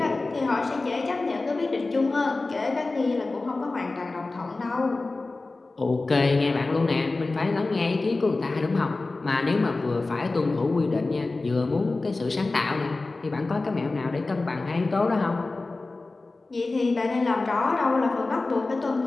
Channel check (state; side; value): quieter; right; 3.4 dB